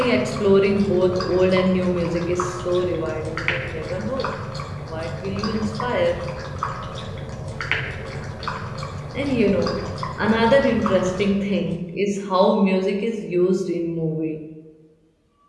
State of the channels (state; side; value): identical; both; correlation 1.00